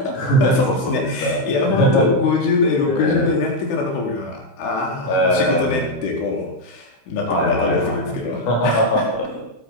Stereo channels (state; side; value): late; right; 15 ms